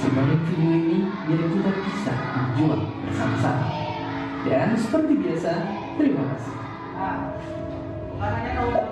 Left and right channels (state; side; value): identical; both; correlation 1.00